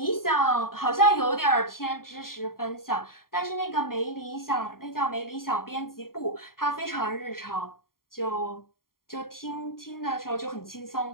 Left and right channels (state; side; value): late; right; 0.92 ms